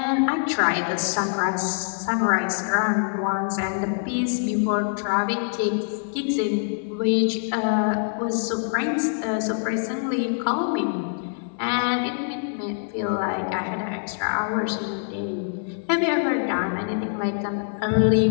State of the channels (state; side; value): silent; right; 62 dB below the other